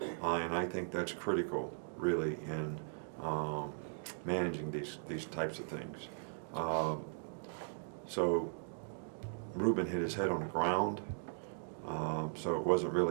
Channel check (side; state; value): left; silent; digital silence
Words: and I think that's critical, really, in managing these types of things. So Ruben hit his head on the ground, so it wasn't